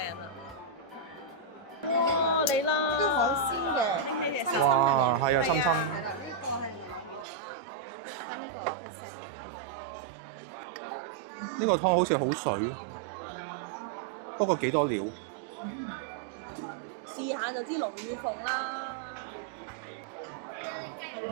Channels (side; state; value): left; drops out; at 7.2 s